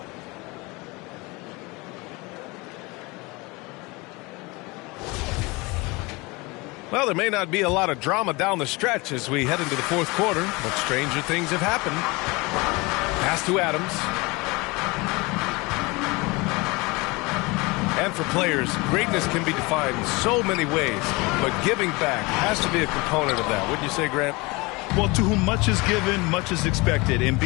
Well, there may not be a lot of drama down the stretch as we head into the fourth quarter, but stranger things have happened. Pass to Adams. And for players, greatness can be defined in so many ways, but giving back has to be a component of that. Wouldn't you say, Grant? Well, to whom much is given, much is expected. In BA,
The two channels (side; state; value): right; quieter; 24.9 dB